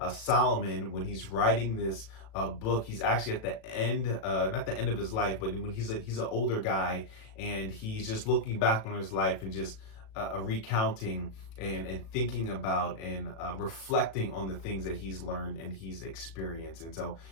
Solomon, when he's writing this book, he's actually at the end, not the end of his life, but when he's an older guy and he's just looking back on his life and just recounting and thinking about and reflecting on the things that he's learned and he's experienced. And so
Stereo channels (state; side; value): late; right; 37 ms